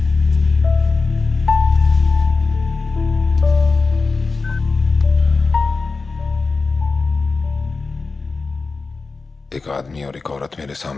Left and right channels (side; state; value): right; quieter; 4.1 dB